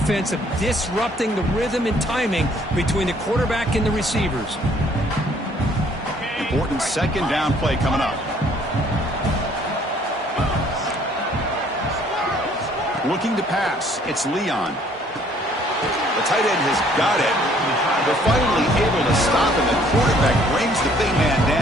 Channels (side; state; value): both; normal; correlation 0.61